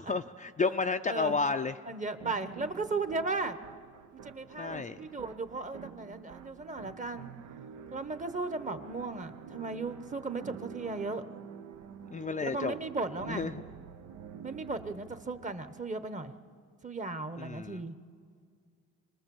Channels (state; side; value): normal; both; correlation 0.20